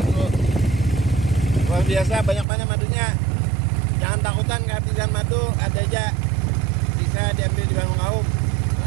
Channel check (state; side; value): drops out; left; at 2.5 s